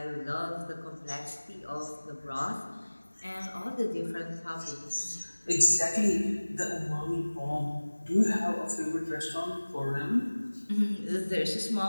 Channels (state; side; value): inverted; both; correlation -1.00